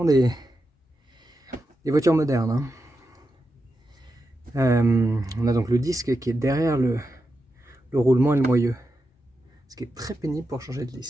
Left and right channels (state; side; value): normal; both; correlation 0.88